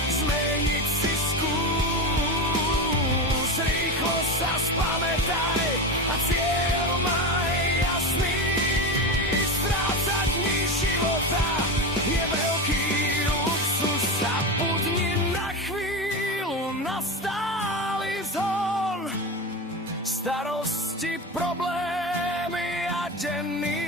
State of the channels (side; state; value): both; normal; correlation 0.20